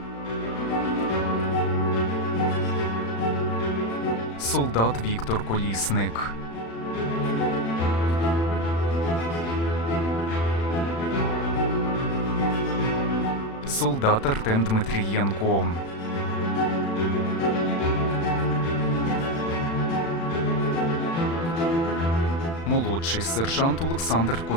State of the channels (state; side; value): late; right; 36 ms